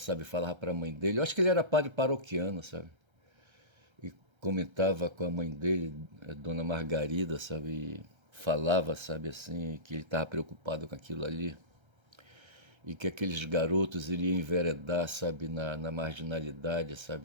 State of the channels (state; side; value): late; left; 1.3 ms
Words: falava para a mãe dele. Eu acho que ele era padre paroquiano, sabe? E comentava com a mãe dele, Dona Margarida, sabe? E falava, sabe, assim, que ele estava preocupado com aquilo ali. E que aqueles garotos iriam enveredar, sabe, na marginalidade,